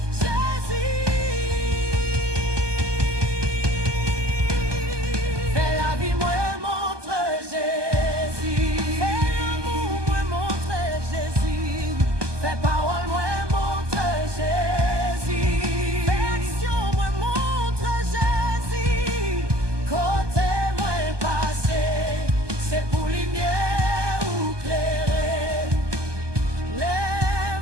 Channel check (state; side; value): late; left; 1.2 ms